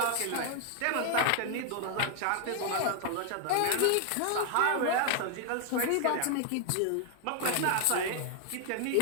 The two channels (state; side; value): different; both; correlation 0.00